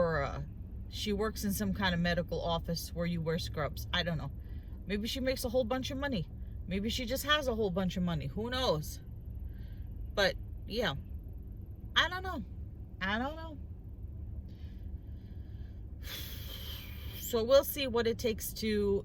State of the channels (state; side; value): identical; both; correlation 1.00